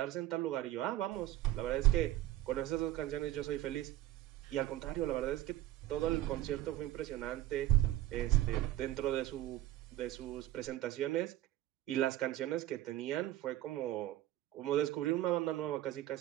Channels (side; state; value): left; quieter; 14.6 dB